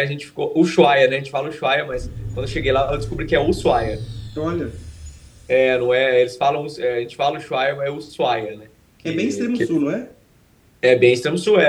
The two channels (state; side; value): identical; both; correlation 1.00